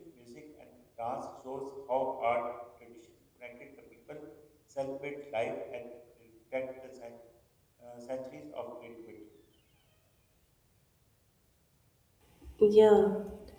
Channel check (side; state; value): both; identical; correlation 1.00